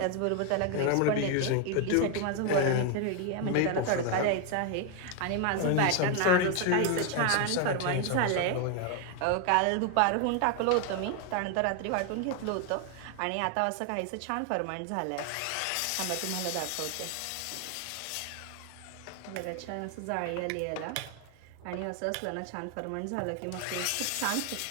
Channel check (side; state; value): both; different; correlation 0.00